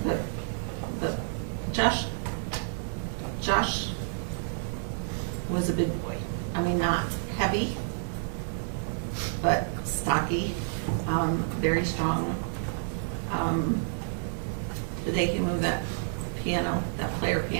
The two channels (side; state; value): left; silent; digital silence